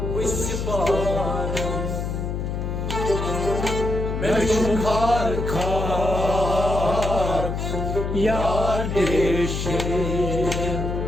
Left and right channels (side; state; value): left; noise; hum, 3 dB below the sound